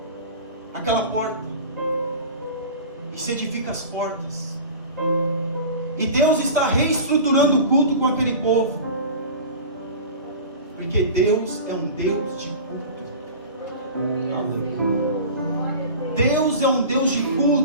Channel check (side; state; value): both; inverted; correlation -0.35